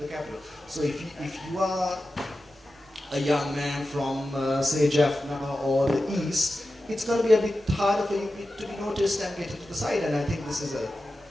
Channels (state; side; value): normal; both; correlation 0.93